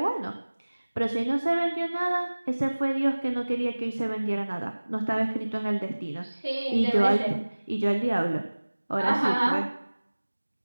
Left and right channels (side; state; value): both; inverted; correlation -1.00